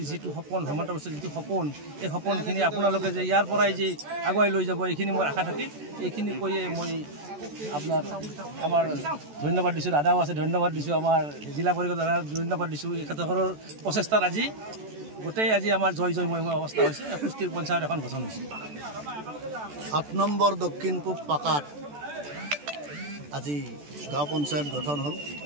যিটো সপোন হেমন্ত বিশ্বৰ যিটো সপোন এই সপোনখিনি আপোনালোকে যে ইয়াৰ পৰাই যে আগুৱাই লৈ যাব এইখিনি মোৰ আশা থাকি এইখিনি কৈয়ে মই আপনাৰ আমাৰ ধন্যবাদ দিছোঁ দাদাও আছে ধন্যবাদ দিছোঁ আমাৰ জিলা পৰিষদ দাদা ধন্যবাদ দিছোঁ এখেতৰ প্ৰচেষ্টাত আজি গোটেই আজি আমাৰ জয় জয়ময় অৱস্থা হৈছে পুষ্টিৰ পঞ্চায়ত এখন গঠন হৈছে 8 নম্বৰ দক্ষিণ পূব পাকাত আজি গাঁও পঞ্চায়ত গঠন হ'ল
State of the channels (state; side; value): late; left; 14 ms